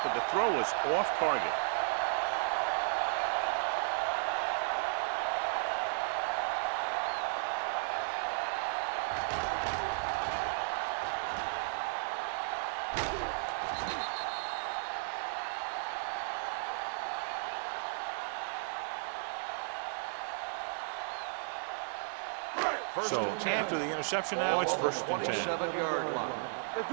but the throw was off target. So after the interception now, it's 1st and 10. Let's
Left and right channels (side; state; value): left; silent; digital silence